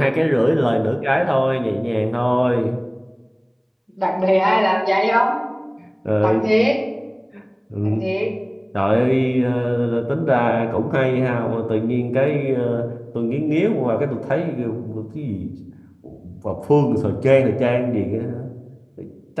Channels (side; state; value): both; identical; correlation 1.00